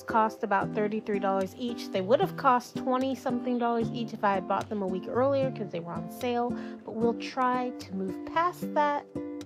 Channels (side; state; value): both; identical; correlation 1.00